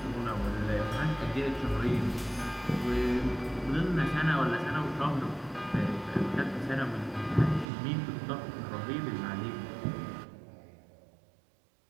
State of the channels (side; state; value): left; drops out; at 7.7 s